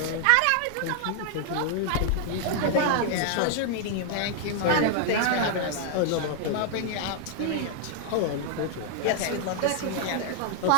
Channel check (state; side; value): different; both; correlation 0.00